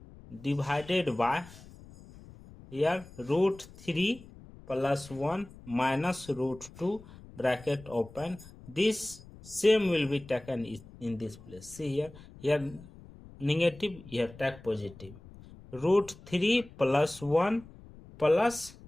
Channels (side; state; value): left; noise; rumble, 20 dB below the sound